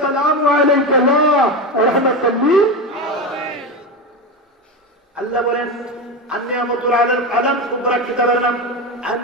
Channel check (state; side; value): normal; both; correlation 0.18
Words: সালামু আলাইকা ওয়া রাহমাতুল লিল আলামিন। আল্লাহ বলেন, আন-নি'মাতুল আলাল আলাম সুবরা কিতাবের নাম,